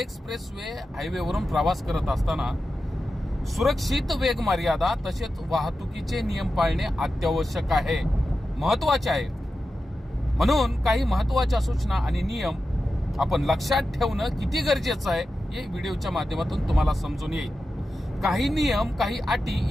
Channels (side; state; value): both; normal; correlation 0.92